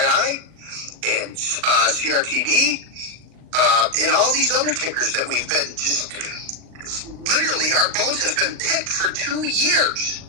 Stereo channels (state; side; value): late; left; 39 ms